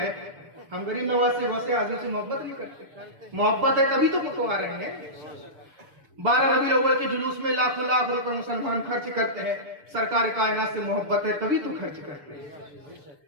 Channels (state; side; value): late; left; 6.8 ms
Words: ہم غریب نواز سے غوث اعظم سے محبت نہیں کرتے. محبت ہے تبھی تو پکوا رہے ہیں. 12 ربیع الاول کے جلوس میں لاکھوں لاکھ روپے مسلمان خرچ کرتے ہیں. سرکار کائنات سے محبت ہے تبھی تو خرچ کرتے ہیں.